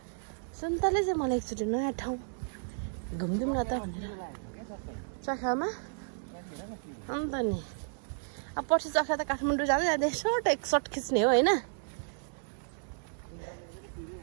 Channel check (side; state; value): left; silent; digital silence